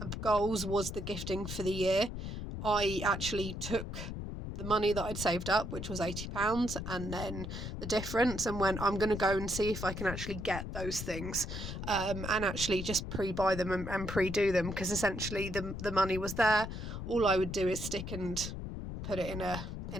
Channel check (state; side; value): noise; left; rumble, 6 dB below the sound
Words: goals was the gifting for the year. I actually took the money that I'd saved up, which was £80, and then the difference, and went, I'm going to go and see if I can actually get those things, and actually just pre-buy them and pre-do them, because essentially the money was there. All I would do is stick and put it in